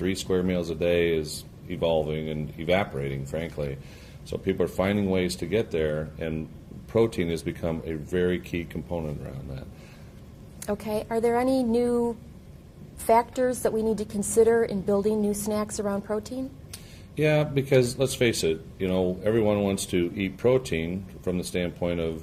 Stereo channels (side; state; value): both; identical; correlation 1.00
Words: square meals a day is evolving and evaporating, frankly. So people are finding ways to get there, and protein has become a very key component around that. Okay, are there any new factors that we need to consider in building new snacks around protein? Yeah, because let's face it, everyone wants to eat protein from the standpoint of